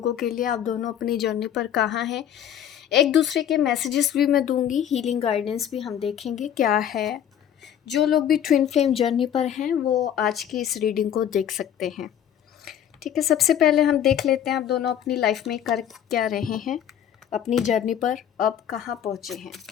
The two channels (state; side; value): quieter; right; 9.8 dB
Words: के लिए। आप दोनों अपनी जर्नी पर कहाँ हैं। एक दूसरे के मैसेजेस भी मैं दूंगी, हीलिंग गाइडेंस भी हम देखेंगे क्या है। जो लोग भी ट्विन फ्लेम जर्नी पर हैं वो आज की इस रीडिंग को देख सकते हैं। ठीक है, सबसे पहले हम देख लेते हैं आप दोनों अपनी लाइफ में कर क्या रहे हैं, अपनी जर्नी पर अब कहाँ पहुँचे हैं।